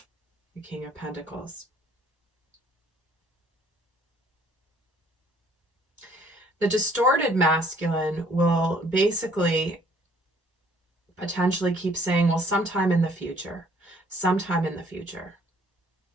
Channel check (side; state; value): both; normal; correlation 0.61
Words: The King of Pentacles. The distorted masculine will basically potentially keep saying, well, sometime in the future. Sometime in the future.